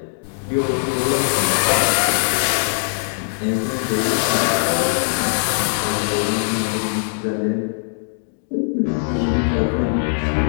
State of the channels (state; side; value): silent; right; 65 dB below the other